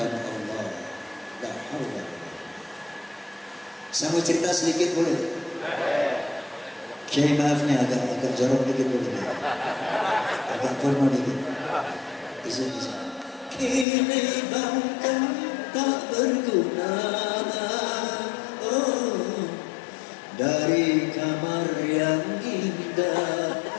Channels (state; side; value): drops out; right; at 13.9 s